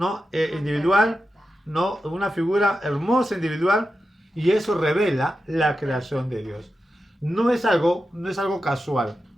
Individual, ¿no? Una figura hermosa, individual, y eso revela la creación de Dios. No es algo casual.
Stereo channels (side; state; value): both; normal; correlation 0.90